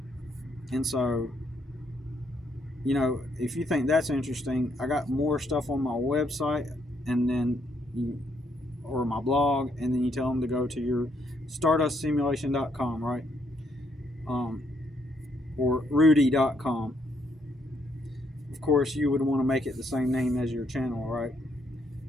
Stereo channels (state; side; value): normal; both; correlation 0.73